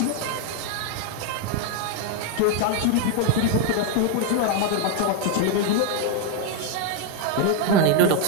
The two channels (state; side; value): different; both; correlation 0.01